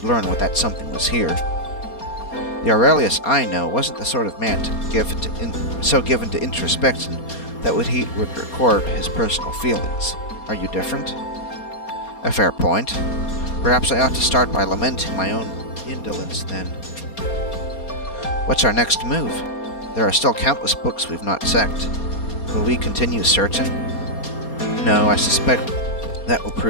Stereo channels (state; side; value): late; right; 4.3 ms